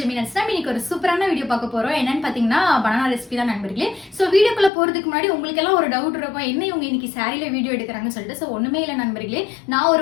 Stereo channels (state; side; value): drops out; right; at 4.7 s